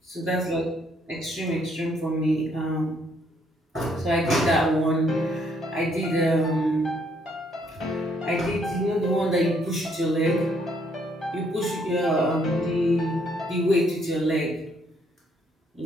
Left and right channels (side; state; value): both; normal; correlation 0.69